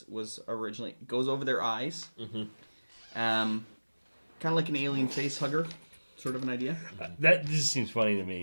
originally goes over their eyes, kind of like an alien face hugger, sort of an idea. That just seems funny to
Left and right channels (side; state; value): both; inverted; correlation -1.00